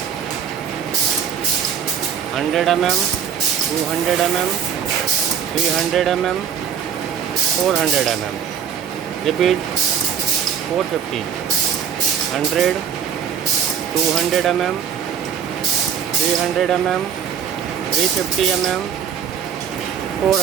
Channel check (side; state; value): left; quieter; 7.8 dB